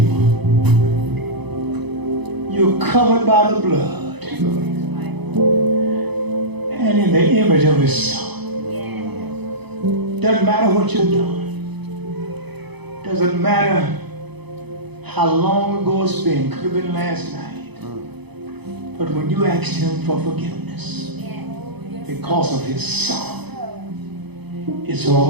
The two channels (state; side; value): late; left; 0.99 ms